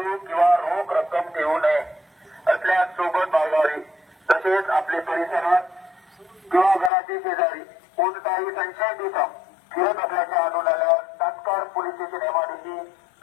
किंवा रोख रक्कम ठेवू नये असल्यास सोबत बाळगावी। तसेच आपले परिसरात किंवा घराचे शेजारी कोणताही संशयित इसम फिरत असल्याचे आढळून आल्यास तात्काळ पोलीस स्टेशन एमआयडीसी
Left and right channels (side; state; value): right; drops out; at 6.9 s